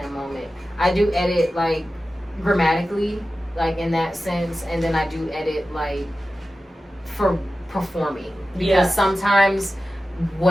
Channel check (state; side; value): normal; both; correlation 0.94